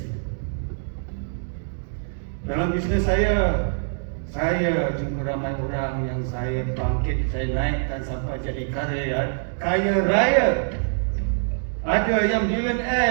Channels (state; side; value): silent; left; digital silence